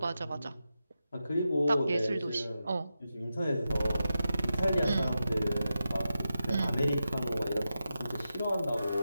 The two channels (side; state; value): both; inverted; correlation -0.89